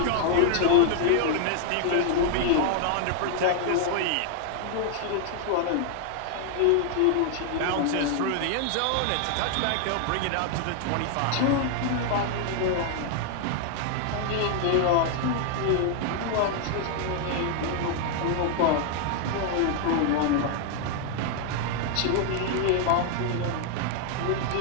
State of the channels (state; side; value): different; both; correlation 0.00